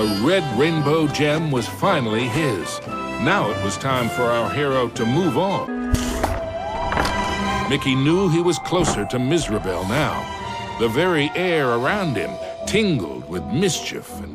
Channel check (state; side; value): identical; both; correlation 1.00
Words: red rainbow gem was finally his. Now it was time for our hero to move on. Mickey knew he was closer to Mizrabel now. The very air around him tingled with mischief